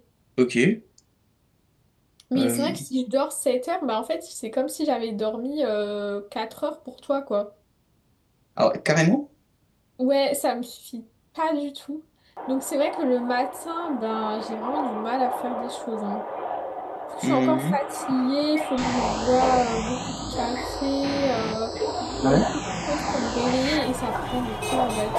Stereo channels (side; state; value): both; identical; correlation 1.00